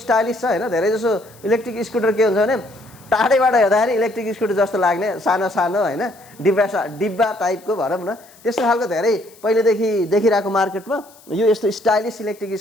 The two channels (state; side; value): noise; left; hiss, 26 dB below the sound